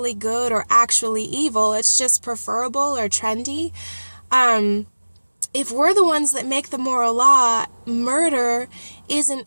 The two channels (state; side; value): inverted; both; correlation -1.00